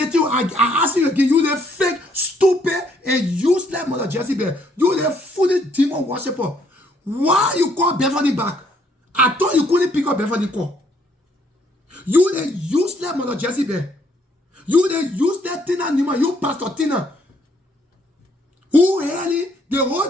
you, I ask you again, you the fake, stupid, and useless Mother Jezebel. You the foolish demon worshiper. Why you call Beverly back? I thought you couldn't pick up Beverly call. You the useless Mother Jezebel. You the useless Tina Newman. You Pastor Tina. Who really, the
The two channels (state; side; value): normal; both; correlation 0.68